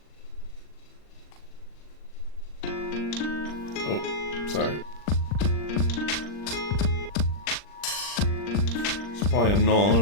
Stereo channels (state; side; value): late; right; 39 ms